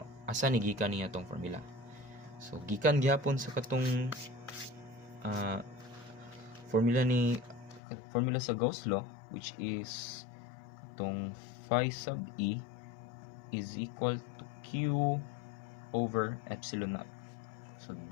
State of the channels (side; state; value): right; drops out; at 7.8 s